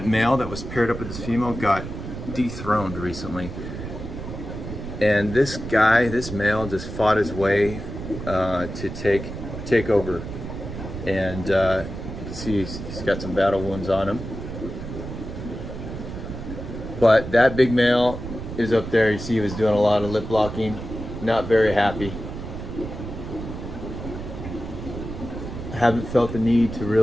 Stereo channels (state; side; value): noise; right; rumble, 8 dB below the sound